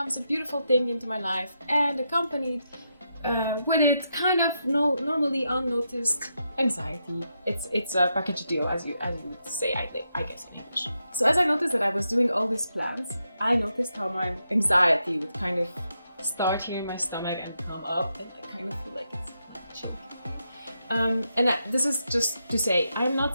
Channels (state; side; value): inverted; both; correlation -0.83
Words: a beautiful thing into my life, and accompanied with it kind of normally unnoticed anxiety. It's a package deal, as you would say, I guess in English. So as I noticed that I was doing all these plans, I noticed how my anxiety would kind of start here in my stomach and come up, and I kind of feel like it's chilly. This is just to say, I'm